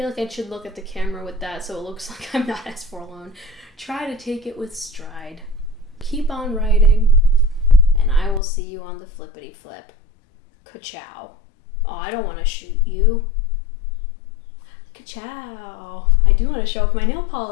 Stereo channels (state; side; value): drops out; right; at 8.4 s